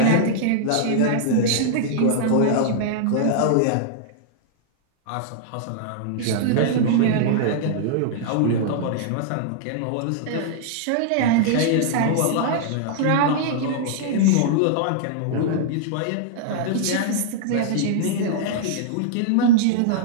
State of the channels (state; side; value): different; both; correlation -0.01